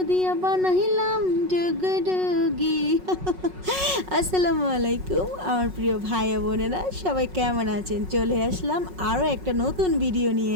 দিয়া বানাইলাম ডুগডুগি। আসসালামু আলাইকুম আমার প্রিয় ভাই বোনেরা, সবাই কেমন আছেন? চলে আসলাম আরও একটা নতুন ভিডিও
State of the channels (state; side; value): late; left; 5.4 ms